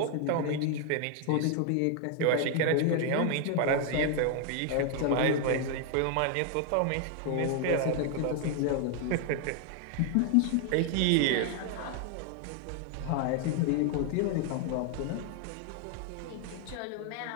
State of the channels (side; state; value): both; different; correlation 0.00